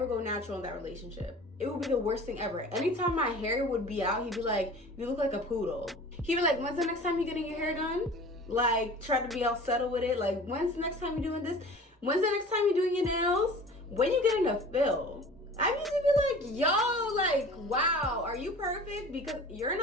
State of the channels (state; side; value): normal; both; correlation 0.42